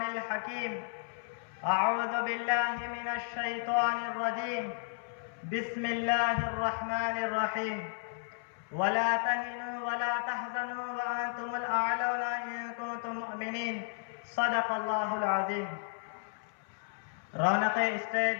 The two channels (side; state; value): right; silent; 56 dB below the other